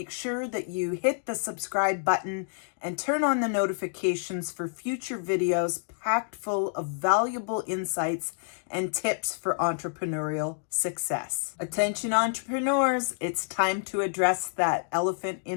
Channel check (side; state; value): right; silent; digital silence